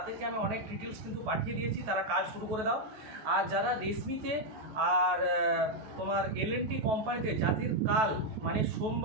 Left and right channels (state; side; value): late; left; 14 ms